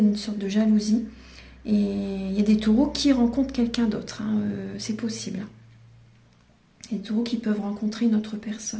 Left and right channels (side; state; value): both; identical; correlation 1.00